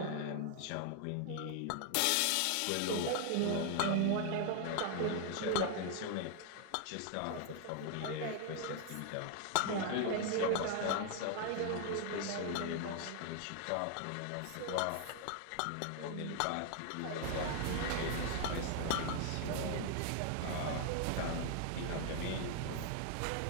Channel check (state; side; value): different; both; correlation 0.00